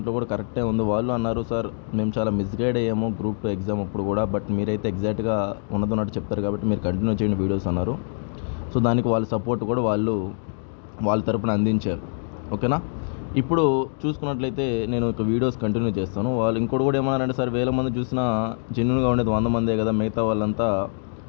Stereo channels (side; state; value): right; silent; digital silence